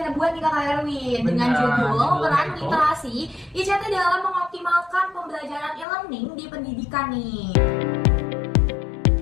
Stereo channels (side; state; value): right; drops out; at 5.9 s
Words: buat nih Kak Erwin dengan Benar, judul peran itu. literasi ICT dalam mengoptimalkan pembelajaran e-learning di pendidikan nih.